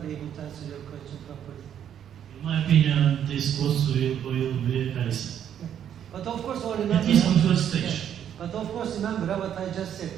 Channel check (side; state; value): left; quieter; 9.5 dB